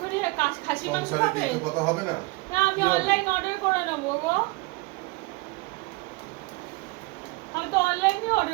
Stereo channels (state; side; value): quieter; left; 24.4 dB